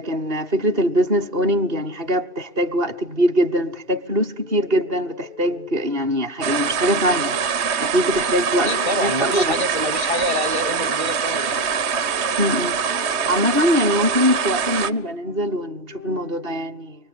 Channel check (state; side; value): late; left; 3.1 ms